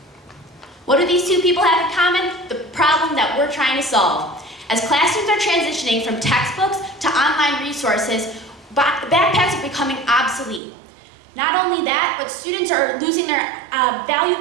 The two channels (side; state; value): left; drops out; at 10.6 s